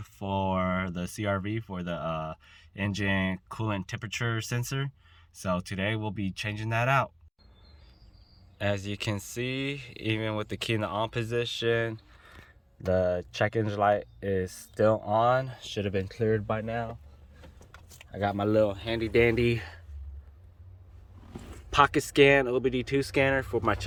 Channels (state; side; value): identical; both; correlation 1.00